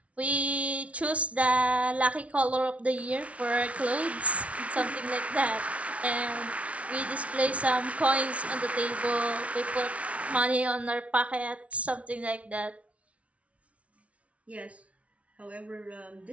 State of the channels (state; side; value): late; left; 0.064 ms